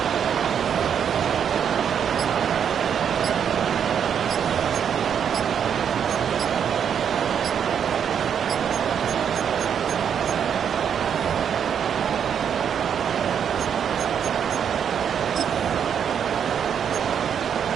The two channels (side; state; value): left; quieter; 8.0 dB